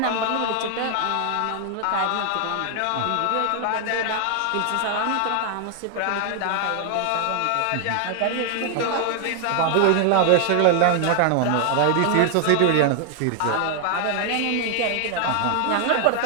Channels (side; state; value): both; different; correlation 0.00